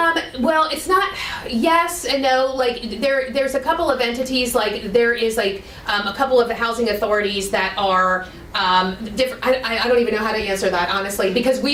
Well, it's not, yes and no. Like, there's a couple of entities, like, there is, like, a couple of the housing authorities that are different. I don't even know how to answer that, honestly, because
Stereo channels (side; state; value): both; identical; correlation 1.00